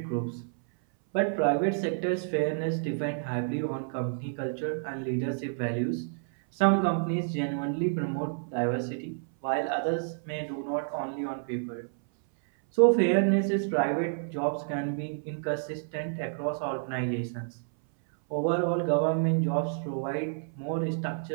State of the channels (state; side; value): silent; left; 58 dB below the other